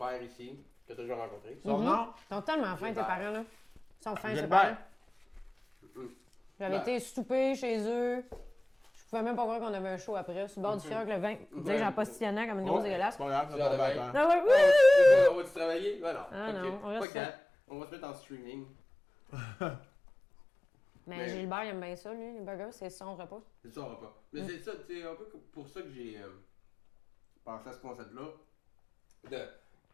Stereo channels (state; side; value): drops out; right; at 17.1 s